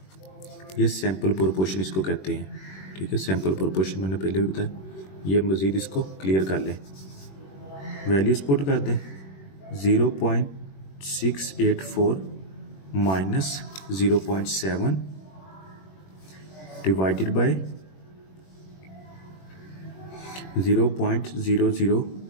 ये सैंपल प्रोपोर्शन इसको कहते हैं ठीक है. सैंपल प्रोपोर्शन मैंने पहले भी बताया, ये मज़ीद इसको क्लियर कर लें, वैल्यूज़ पुट कर दें 0.684 माइनस 0.7 डिवाइडेड बाय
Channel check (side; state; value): right; late; 21 ms